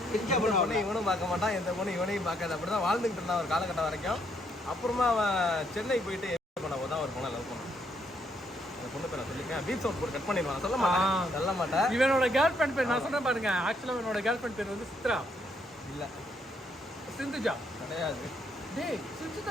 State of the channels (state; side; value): normal; both; correlation 0.73